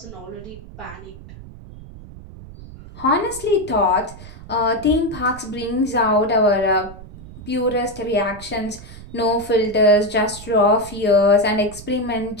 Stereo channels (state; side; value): noise; right; rumble, 16 dB below the sound